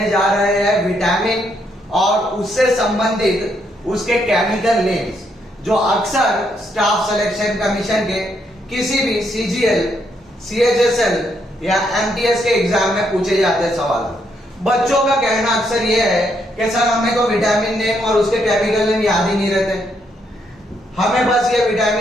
जा रहे हैं विटामिन और उससे संबंधित उसके केमिकल नेम्स जो अक्सर स्टाफ सिलेक्शन कमीशन के किसी भी सीजीएल, सीएचएसएल या एमटीएस के एग्जाम में पूछे जाते हैं सवाल। बच्चों का कहना अक्सर यह है कि सर हमें तो विटामिन नेम और उसके केमिकल नेम याद ही नहीं रहते। हमें बस ये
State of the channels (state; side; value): normal; both; correlation 0.75